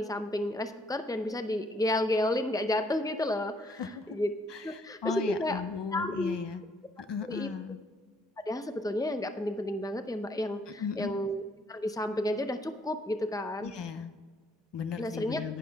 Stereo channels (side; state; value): both; normal; correlation 0.68